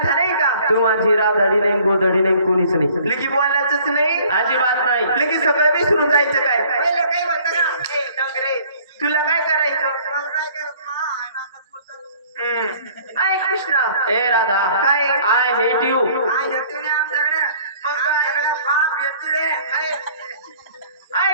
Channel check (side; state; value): both; inverted; correlation -0.54